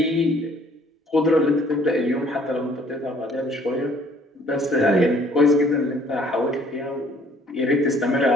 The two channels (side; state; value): both; normal; correlation 0.59